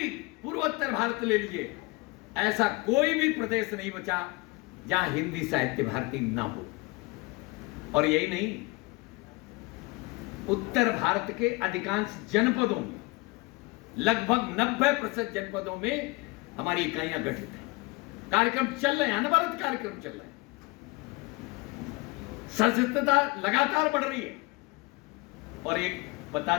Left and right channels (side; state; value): right; quieter; 24.2 dB